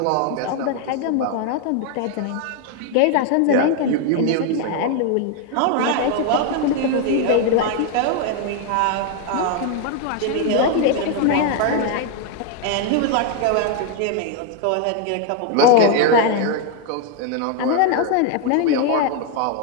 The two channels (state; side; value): different; both; correlation 0.00